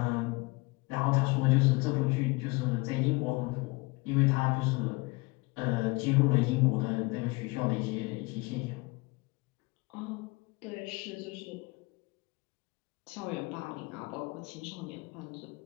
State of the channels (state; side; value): quieter; right; 25.5 dB